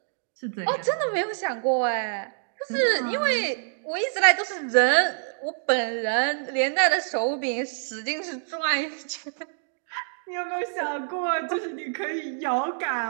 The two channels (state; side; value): silent; left; digital silence